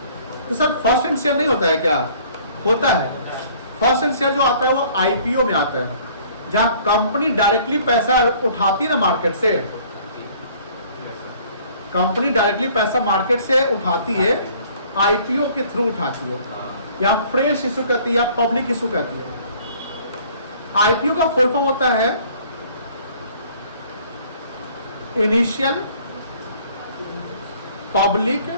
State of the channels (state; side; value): inverted; both; correlation -0.55